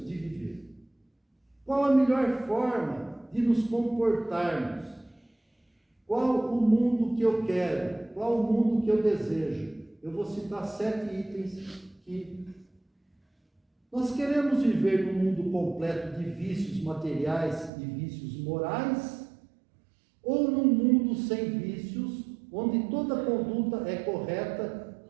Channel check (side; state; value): left; drops out; at 17.7 s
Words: de viver. Qual a melhor forma de nos comportarmos? Qual o mundo que eu quero? Qual o mundo que eu desejo? Eu vou citar 7 itens que nós queremos viver num mundo completo de vícios materiais e vícios morais, ou num mundo sem vícios, onde toda conduta é correta,